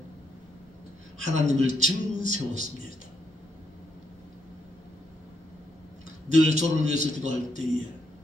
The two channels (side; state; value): both; normal; correlation 0.77